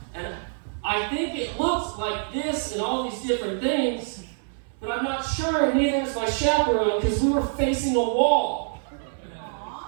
And I think it looks like this and all these different things, but I'm not sure, and neither is my chaperone, because we were facing a wall.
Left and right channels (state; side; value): silent; left; 61 dB below the other